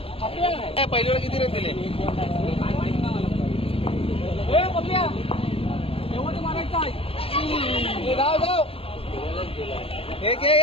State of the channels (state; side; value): late; right; 0.27 ms